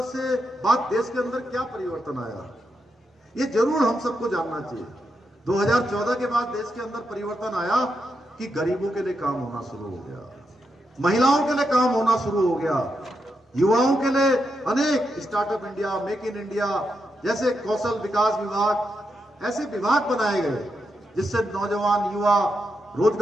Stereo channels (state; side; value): normal; both; correlation 0.84